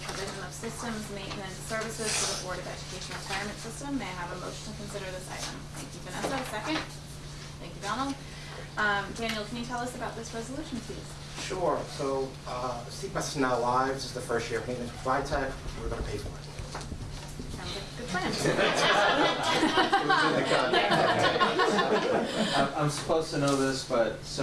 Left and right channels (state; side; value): identical; both; correlation 1.00